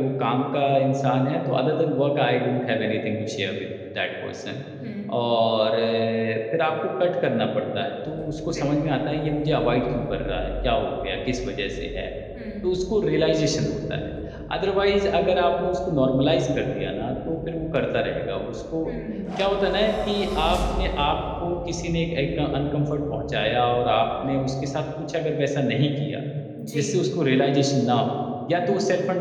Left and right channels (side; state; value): both; identical; correlation 1.00